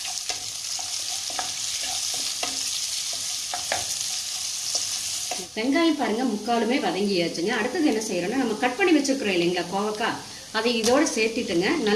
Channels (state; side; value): identical; both; correlation 1.00